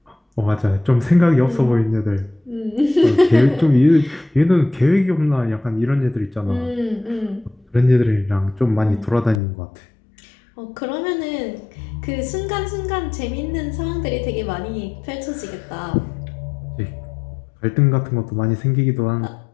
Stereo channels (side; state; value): right; drops out; at 9.4 s